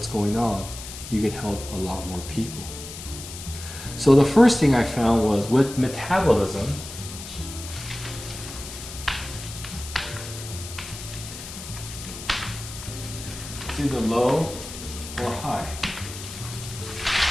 going on, you can help a lot more people. So the first thing I found was with metabolism, it's either low or high.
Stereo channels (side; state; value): left; noise; hiss, 11 dB below the sound